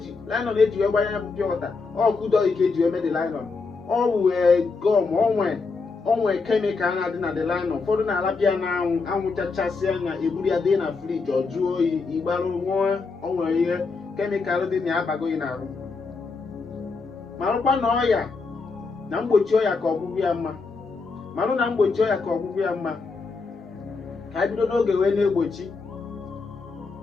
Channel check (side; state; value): right; quieter; 4.4 dB